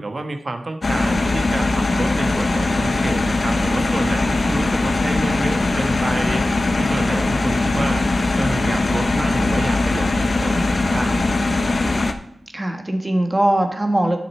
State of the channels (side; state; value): both; normal; correlation 0.95